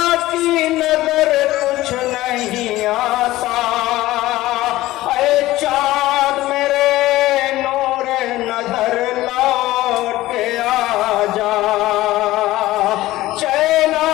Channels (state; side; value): quieter; right; 16.8 dB